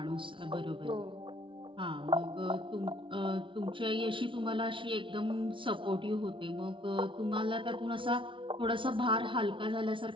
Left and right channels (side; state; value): left; late; 0.25 ms